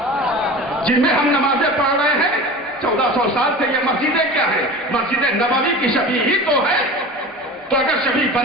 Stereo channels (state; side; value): normal; both; correlation 0.35